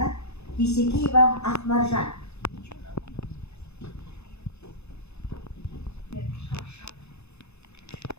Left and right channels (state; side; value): late; right; 0.80 ms